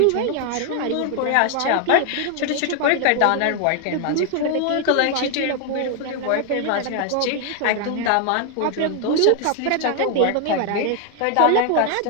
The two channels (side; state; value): both; different; correlation 0.00